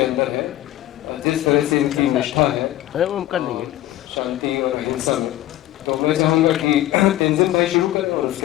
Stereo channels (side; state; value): right; quieter; 14.5 dB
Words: अंदर है, जिस तरह से इनकी निष्ठा है शांति और अहिंसा में। तो मैं चाहूँगा कि तेंजिन भाई शुरू करें और